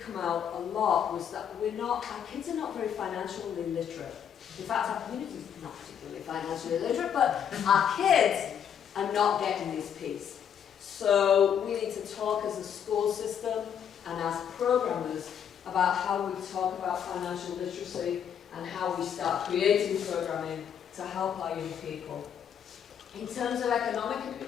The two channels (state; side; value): quieter; right; 8.5 dB